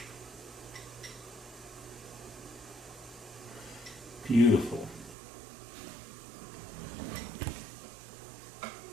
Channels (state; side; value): drops out; left; at 5.2 s